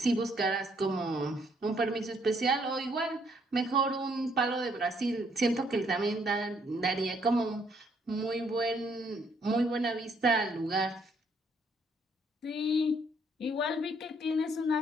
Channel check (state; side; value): normal; both; correlation 0.69